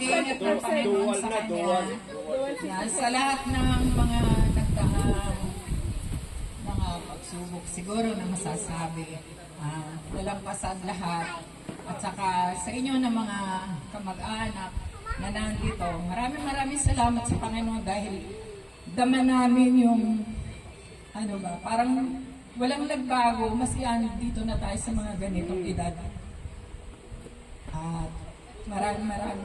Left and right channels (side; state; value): both; identical; correlation 1.00